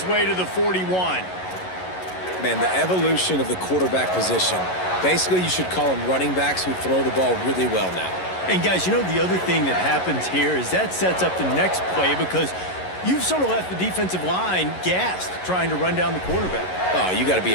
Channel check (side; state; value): right; late; 11 ms